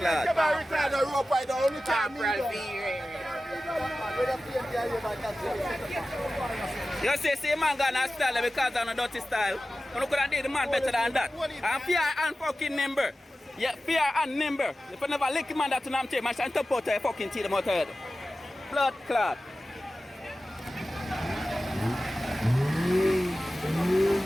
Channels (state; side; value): normal; both; correlation 0.95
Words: You see man got a style because of a dirty style. You could have did the man better than that. And fear and fucking nimble. Yeah, fear and nimble. If you never lick man that to them take, man shall top out your fucking teeth them out head. Blood clot.